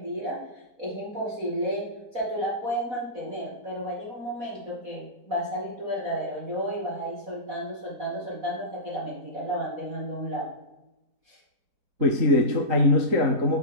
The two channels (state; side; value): late; left; 3.9 ms